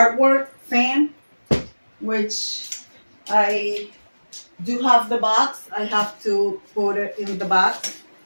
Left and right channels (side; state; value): both; inverted; correlation -1.00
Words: fan, which I do have the box. I have to put it in the box.